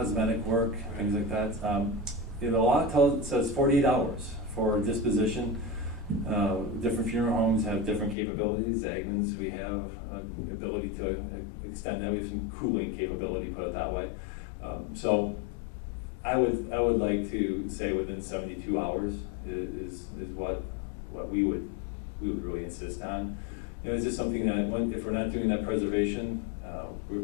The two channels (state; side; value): drops out; right; at 8.2 s